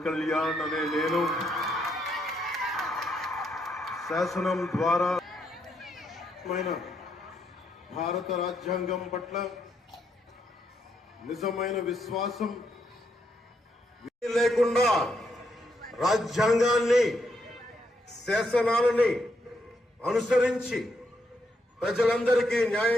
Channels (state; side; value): normal; both; correlation 0.78